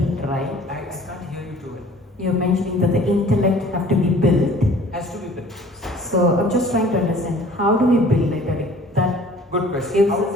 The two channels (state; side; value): normal; both; correlation 0.50